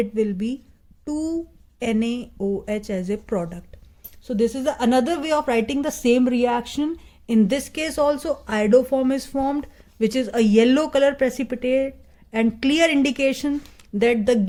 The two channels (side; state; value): both; identical; correlation 1.00